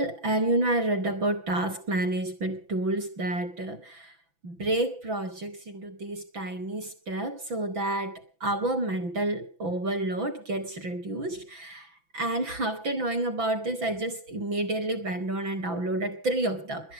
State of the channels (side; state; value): left; late; 6.0 ms